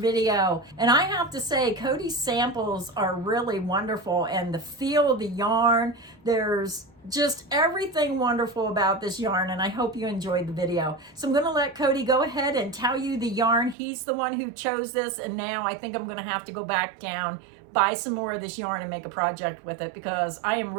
And I have to say, Cody's samples are really wonderful and the feel of the yarn, there's just everything wonderful about this yarn and I hope you enjoyed the video. So I'm gonna let Cody go ahead and tell you the yarn. He's the one who chose this and now I think I'm gonna have to go back down, buy some more of this yarn and make a project with it because I am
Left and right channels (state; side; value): drops out; left; at 13.8 s